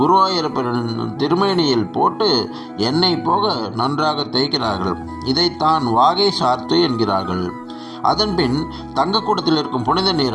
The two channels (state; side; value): identical; both; correlation 1.00